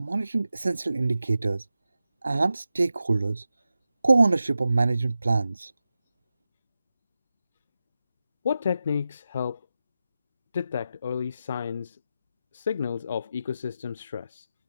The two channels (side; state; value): both; inverted; correlation -0.91